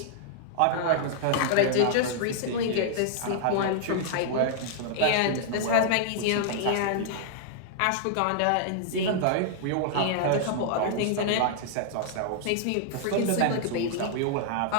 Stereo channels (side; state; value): both; different; correlation -0.01